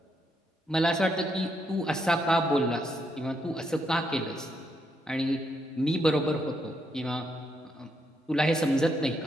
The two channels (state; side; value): normal; both; correlation 0.77